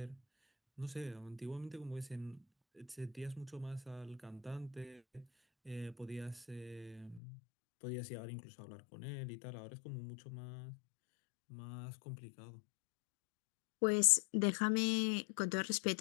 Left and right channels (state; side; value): drops out; right; at 7.2 s